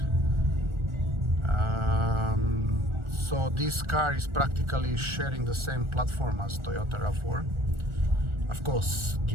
So this car is practically sharing the same platform as Toyota RAV4. Of course,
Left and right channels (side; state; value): left; late; 1.4 ms